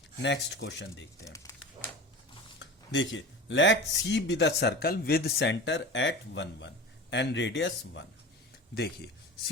नेक्स्ट क्वेश्चन देखते हैं, देखिए, let C be the circle with centre at 1, 1 and radius 1। देखिए,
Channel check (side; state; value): both; normal; correlation 0.33